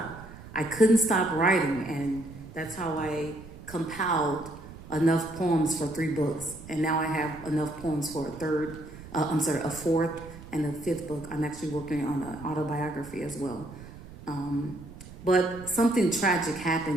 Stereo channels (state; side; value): noise; right; rumble, 16 dB below the sound